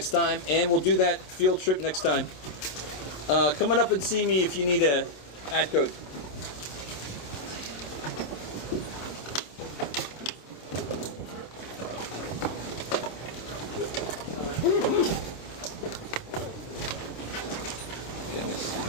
time, and we'll do that field trip next time. Come on up and see me if you need a ad code.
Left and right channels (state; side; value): late; right; 27 ms